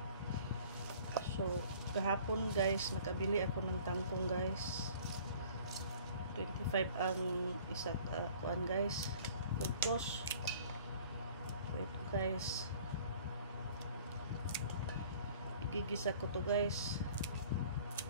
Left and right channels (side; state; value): both; inverted; correlation -0.50